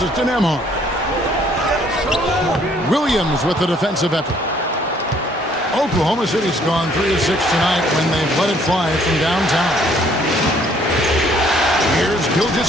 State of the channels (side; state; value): both; normal; correlation 0.62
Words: to Nembhard. Williams with the defensive effort. Oklahoma City's gone 3 of 6 tonight when they've let it fly from downtown. Here's